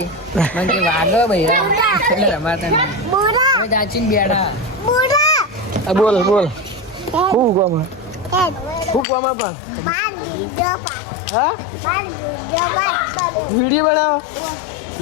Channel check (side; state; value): right; drops out; at 9.1 s